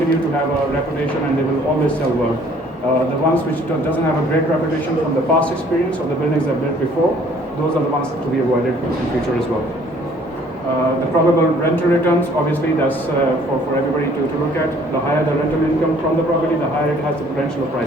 to have a reputation and they will always sell well. The ones which doesn't have a great reputation from the past experience of the buildings they've built before, those are the ones to be avoided in future as well. The probable rental returns, obviously that's for everybody to look at. The higher the rental income from the property, the higher it has the potential of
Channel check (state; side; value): normal; both; correlation 0.58